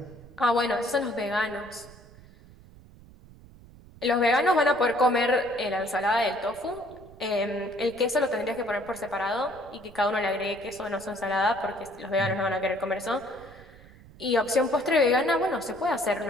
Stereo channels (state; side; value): noise; right; rumble, 22 dB below the sound